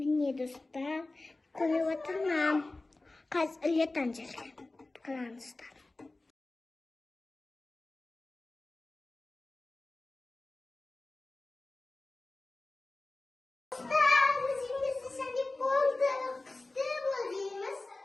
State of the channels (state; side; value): quieter; right; 3.1 dB